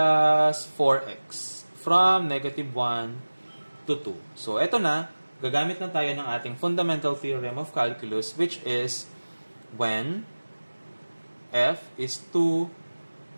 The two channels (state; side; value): inverted; both; correlation -1.00